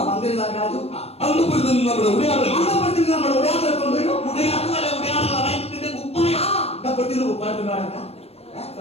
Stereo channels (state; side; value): late; right; 0.29 ms